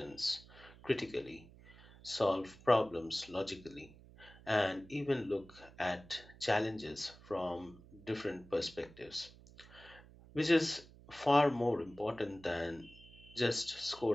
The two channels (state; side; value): noise; right; hum, 21 dB below the sound